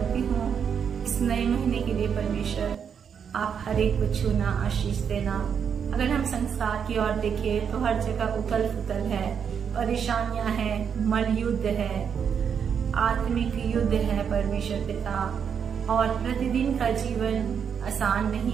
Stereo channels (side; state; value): left; quieter; 7.3 dB